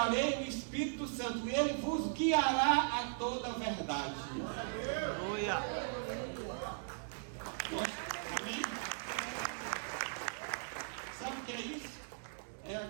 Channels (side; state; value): left; silent; digital silence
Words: o Espírito Santo. E Ele vos guiará a toda a verdade. Aleluia. Amém? Sabe o que é isso? É a